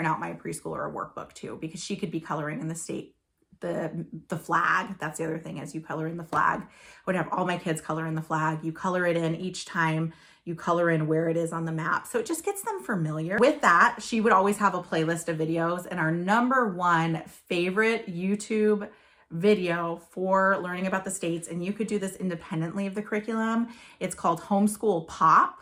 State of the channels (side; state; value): both; identical; correlation 1.00